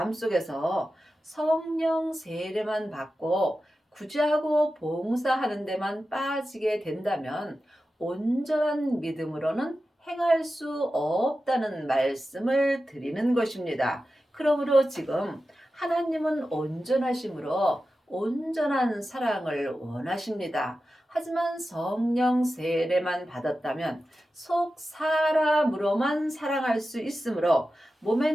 속에서 성령 세례만 받고 구제하고 봉사하는 데만 빠지게 된다면 온전한 믿음으로는 행할 수 없다는 말씀을 드리는 것입니다. 그러므로 지금 하나님은 온전하심으로 온전한 사랑을 원하십니다. 하지만 성령 세례만 받았다면 속 사람으로만 사랑할 수 있으므로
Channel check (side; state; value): both; normal; correlation 0.93